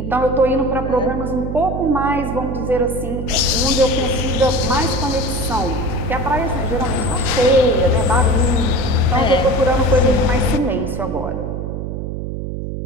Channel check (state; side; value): noise; right; hum, 5 dB below the sound